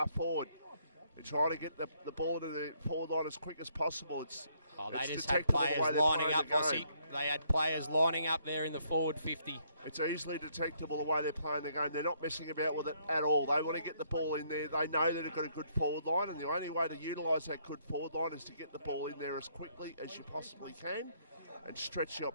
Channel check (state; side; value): inverted; both; correlation -0.69